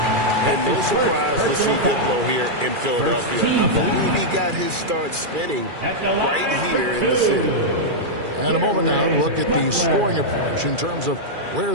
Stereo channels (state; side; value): late; left; 2.3 ms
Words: And no surprise to see Diplo here in Philadelphia. I believe he got his start spinning right here in the city. And a moment now to look at the scoring approach in terms of where